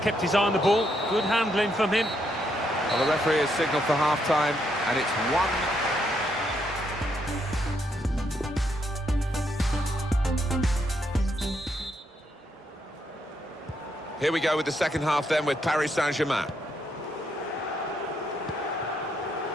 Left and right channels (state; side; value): normal; both; correlation 0.77